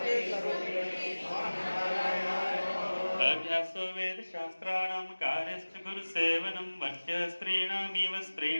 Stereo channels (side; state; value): both; inverted; correlation -1.00